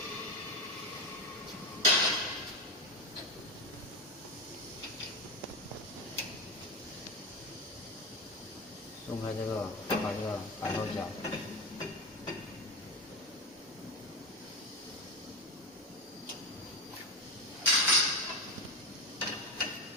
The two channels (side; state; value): both; normal; correlation 0.17